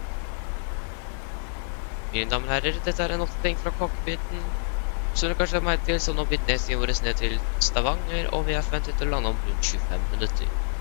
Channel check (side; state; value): right; silent; 60 dB below the other